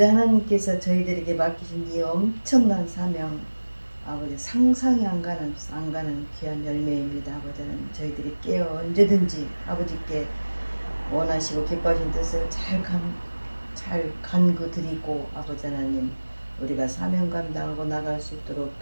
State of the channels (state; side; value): inverted; both; correlation -1.00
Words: 하나님께서 저희들에게 맡기신 이 엄청난 사명 아버지 상상이 안 가는 귀한 열매입니다. 아버지 하나님 저희들이 깨어 언제든지 아버지께 원하시고 기뻐하신 뜻을 잘 간구 드리고 아버지 하나님 우리가 사명 감당하고 나갈 수 있도록